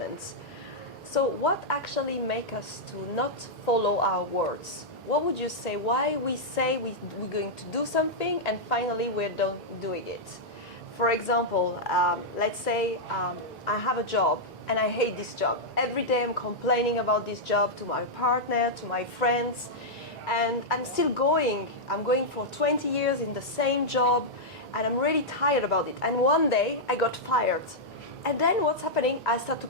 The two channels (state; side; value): normal; both; correlation -0.06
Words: So what actually makes us to not follow our words? What would you say? Why we say we're going to do something and finally we're not doing it? For example, let's say I have a job and I hate this job. Every day I'm complaining about this job to my partner, to my friends, and I'm still going. I'm going for 20 years in the same job and I'm really tired about it. And one day I got fired. And then what's happening? I start to